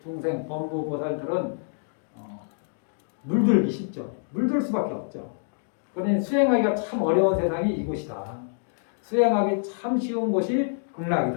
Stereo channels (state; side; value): silent; right; digital silence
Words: 범부 보살들은 물들기 쉽죠. 물들 수밖에 없죠. 그러니 수행하기가 참 어려운 세상이 이곳이다. 수행하기 참 쉬운 곳이